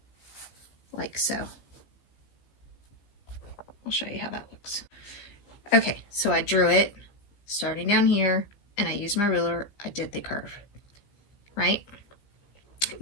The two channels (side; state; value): right; late; 15 ms